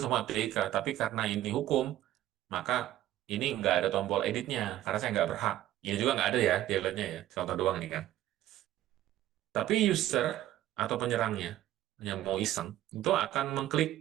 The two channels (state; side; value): quieter; left; 13.7 dB